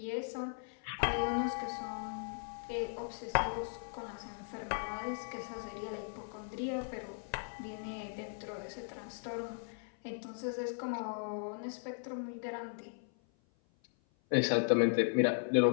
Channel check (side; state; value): right; silent; 53 dB below the other